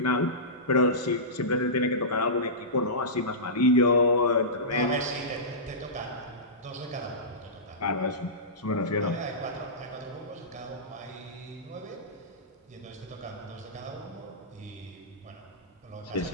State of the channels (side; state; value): both; normal; correlation -0.19